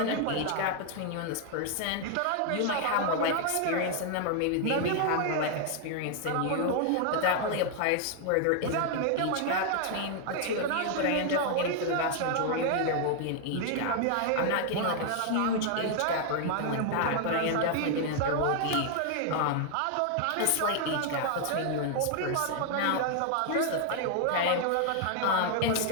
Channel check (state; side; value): different; both; correlation 0.00